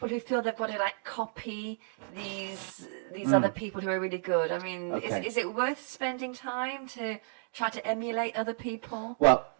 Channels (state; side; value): silent; left; digital silence